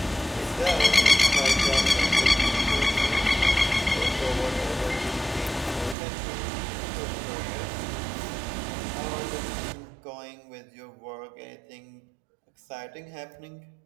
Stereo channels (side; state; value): left; drops out; at 6.0 s